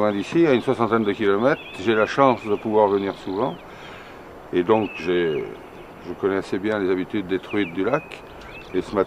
d'ici, à une 60aine de kilomètres. J'ai la chance de pouvoir venir souvent. Et donc je connais assez bien les habitudes des truites du lac. Et ce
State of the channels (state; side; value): identical; both; correlation 1.00